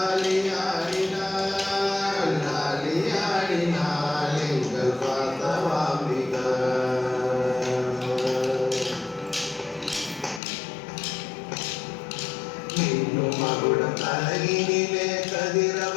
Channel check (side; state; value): right; drops out; at 10.4 s